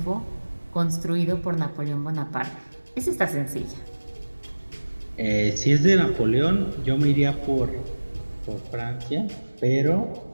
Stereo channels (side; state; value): both; inverted; correlation -1.00